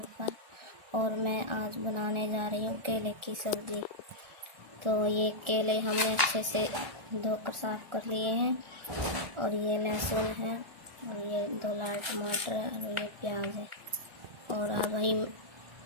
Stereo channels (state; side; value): late; left; 1.4 ms